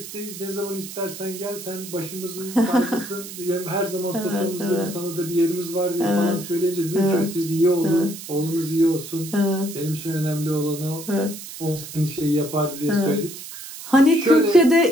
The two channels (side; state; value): right; noise; hiss, 12 dB below the sound